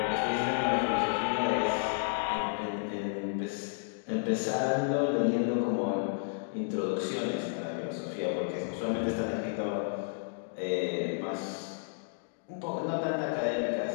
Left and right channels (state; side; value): silent; right; digital silence